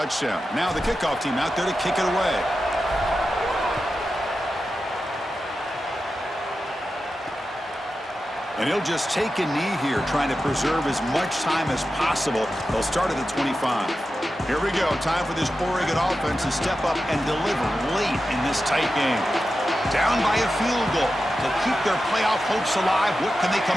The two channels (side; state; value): both; normal; correlation 0.91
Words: Now the kickoff team out there to kick it away. And he'll just take a knee here, trying to preserve as much time as possible. They'll start at the 25. Here we go. Time for this Oregon offense to step up and deliver late in this tight game. Down by a field goal to keep their playoff hopes alive. What can they